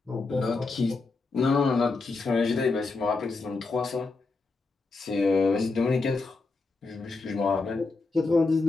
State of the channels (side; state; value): right; quieter; 3.8 dB